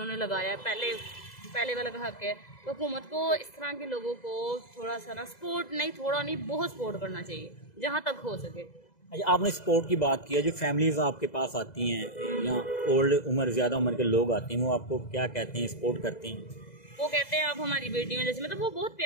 लगाया है, पहले वाला का हक है, तो हुकूमत को इस तरह के लोगों को थोड़ा सा ना सपोर्ट नहीं, थोड़ा नहीं बहुत सपोर्ट करना चाहिए जहाँ तक हो सके। अच्छा, आपने सपोर्ट की बात की है, जो फैमिलीज आपके पास आती हैं या ओल्ड उम्र ज़्यादा उम्र के लोग आते हैं, वो आपको क्या कहते हैं, सपोर्ट करते हैं? वो कहते हैं आप हमारी बेटी में, जैसे मतलब वो बहुत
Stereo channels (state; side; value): late; right; 2.0 ms